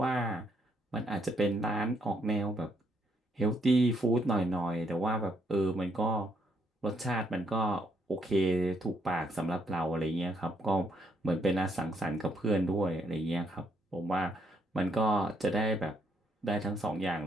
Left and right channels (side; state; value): both; normal; correlation 0.73